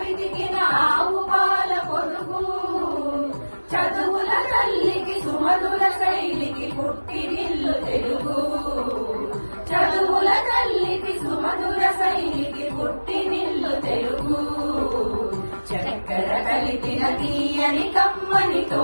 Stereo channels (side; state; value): both; inverted; correlation -1.00